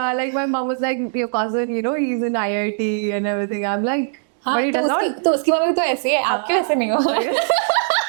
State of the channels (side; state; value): left; silent; digital silence